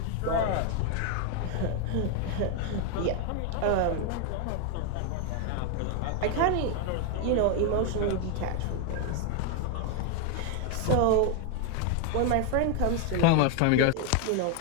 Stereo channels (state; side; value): different; both; correlation 0.01